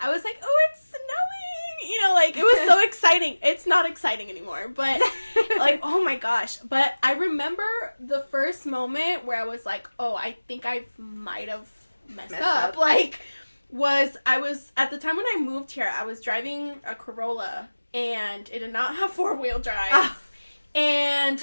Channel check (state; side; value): inverted; both; correlation -1.00